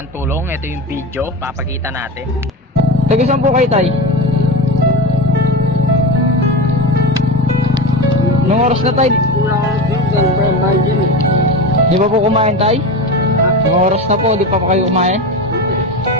tulong. Ito yung video, papakita natin. Taga saan po kayo, tay? Nung oras na tayo? Di ba po kumain tayo? Nung oras na po, di pa pa kayo kumain?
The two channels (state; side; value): normal; both; correlation 0.23